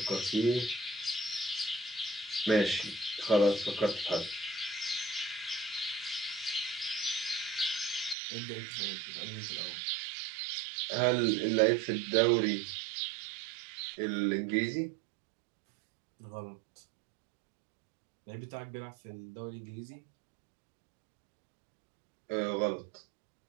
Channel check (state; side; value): drops out; left; at 8.2 s